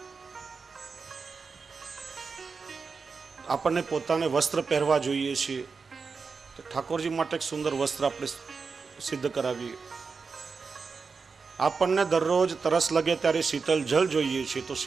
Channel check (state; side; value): quieter; left; 4.9 dB